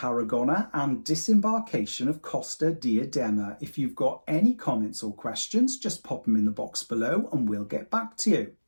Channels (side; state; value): both; inverted; correlation -1.00